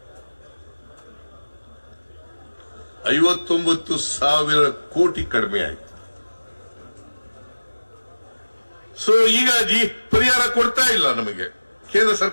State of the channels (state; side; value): inverted; both; correlation -1.00